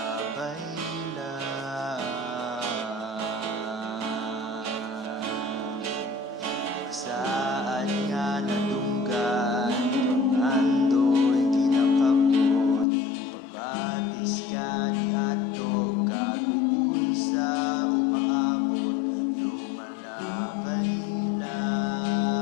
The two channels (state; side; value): drops out; right; at 12.9 s